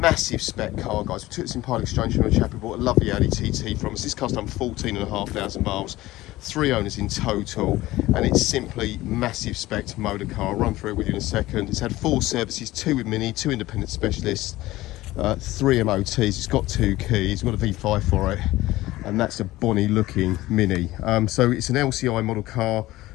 spec car, guys. We took this in part exchange from a chap who bought a lovely Audi TT from us. This car's done 14,500 miles, 3 owners in total, and it's simply massive spec motor car. I'll run through it with you in a second. It's had 4 services, 2 with Mini, 2 independent specialists, 3 MOTs. It's got 2 keys, got a V5 for it, and that's a bonny looking Mini. So it's an LCI model car.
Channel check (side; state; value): right; quieter; 17.4 dB